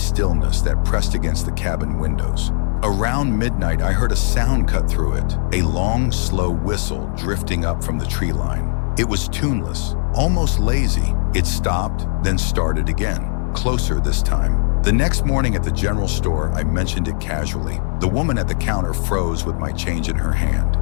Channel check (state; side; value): silent; right; digital silence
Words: that pressed against the cabin windows. Around midnight, I heard a sound cut through it, a long, slow whistle drifting up from the tree line. It was tuneless, almost lazy. It stopped, then started again, closer this time. The next morning at the general store, I mentioned it casually. The woman at the counter froze with my change in her hand.